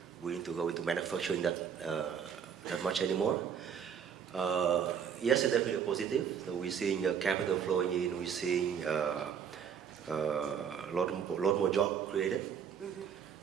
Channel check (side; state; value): left; quieter; 7.6 dB